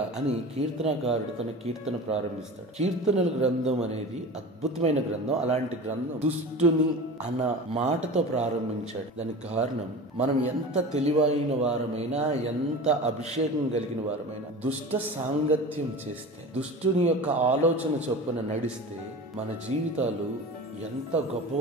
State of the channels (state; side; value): normal; both; correlation 0.34